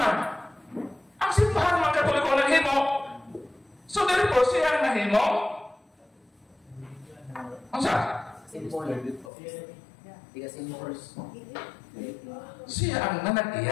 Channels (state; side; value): drops out; right; at 9.3 s